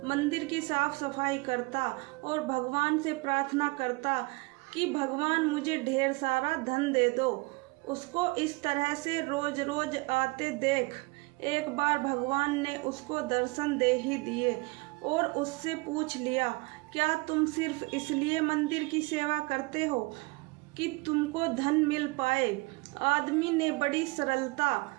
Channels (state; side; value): quieter; left; 25.9 dB